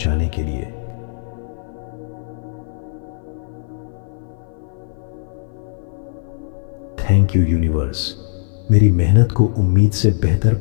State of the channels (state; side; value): silent; right; 56 dB below the other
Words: के लिए। थैंक यू यूनिवर्स, मेरी मेहनत को उम्मीद से बेहतर